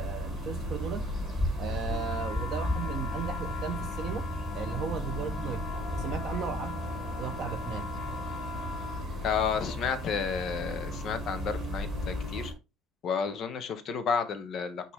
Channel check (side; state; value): both; normal; correlation 0.56